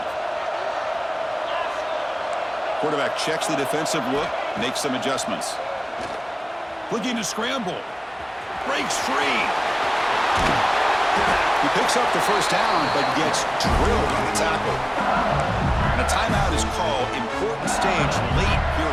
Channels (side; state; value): both; identical; correlation 1.00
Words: Quarterback checks the defensive look, makes some adjustments. Looking to scramble. Breaks free. He picks up the first down, but gets drilled on the tackle. And a timeout is called. Important stage late here